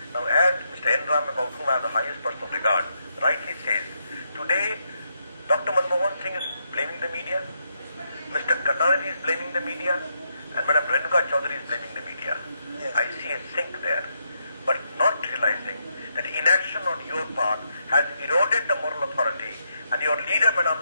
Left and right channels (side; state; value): both; inverted; correlation -0.80